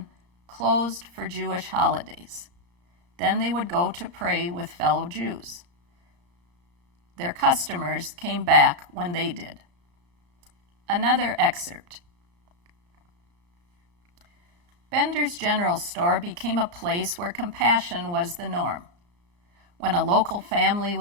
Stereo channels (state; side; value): late; left; 34 ms